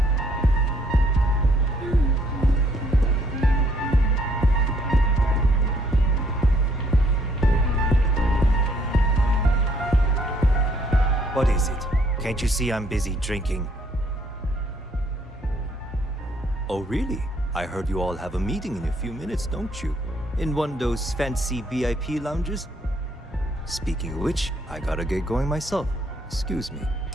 What is it? Can't you see I'm busy drinking? Oh, really? I heard you all have a meeting in a few minutes, don't you? In one of those fancy VIP lounges? Speaking of which, I gotta get going myself. Excuse me.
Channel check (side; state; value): both; normal; correlation 0.67